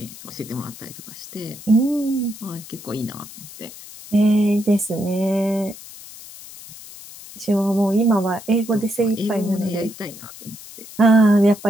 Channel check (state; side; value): noise; left; hiss, 16 dB below the sound